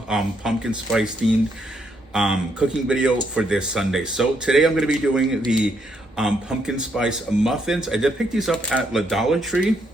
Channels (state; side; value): normal; both; correlation 0.75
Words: spice themed cooking video for this Sunday. So today I'm going to be doing the pumpkin spice muffins. I did pick these up at the Dollar Tree,